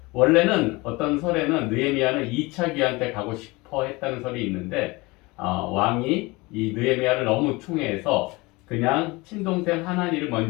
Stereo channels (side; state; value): right; quieter; 23.6 dB